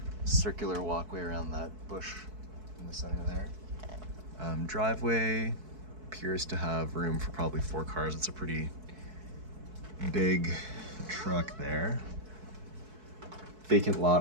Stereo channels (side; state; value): left; late; 4.6 ms